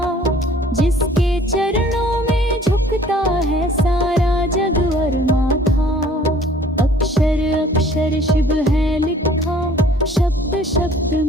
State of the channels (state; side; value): normal; both; correlation 0.54